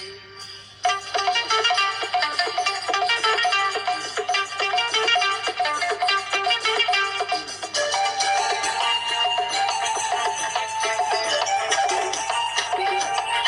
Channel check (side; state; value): both; identical; correlation 1.00